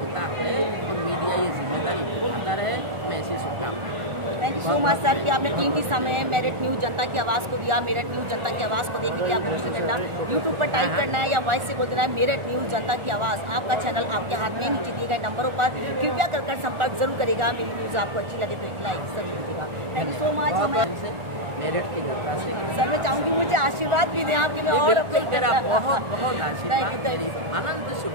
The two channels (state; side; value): late; left; 1.4 ms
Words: है और मीडिया ये जिम्मेदारी निभाता रहे। मैं ऐसी शुभकामनाएं। Thank you so much sir कि आपने कीमती समय मेरठ न्यूज़ जनता की आवाज़ को दिया। मेरठ न्यूज़ जनता की आवाज़ को देखने के लिए आपको कुछ नहीं करना, यूट्यूब पर टाइप करना है या वॉइस से बोल देना है मेरठ न्यूज़ जनता की आवाज़। आपका चैनल आपके हाथ में, नीचे दिए गए नंबरों पर कृपया कर संपर्क जरूर करेगा। मेरी न्यूज़ आपको अच्छी लगे तो एक लाइक जरूर दीजिएगा। Thank you so much. हमें मेरठ की जनता से सर मैं चाहूँगी मुझे आशीर्वाद भी दें आपके, मैं और अपने तेरा बहुत बहुत आशीर्वाद, मेरी अनंत